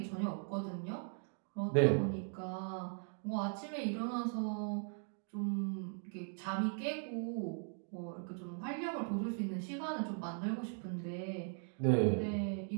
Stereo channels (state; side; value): silent; left; 52 dB below the other